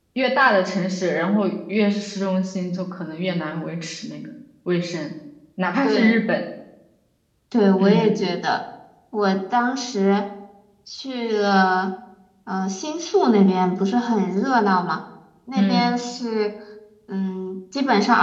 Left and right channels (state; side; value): identical; both; correlation 1.00